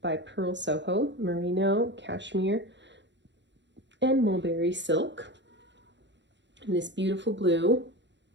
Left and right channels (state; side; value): late; left; 0.52 ms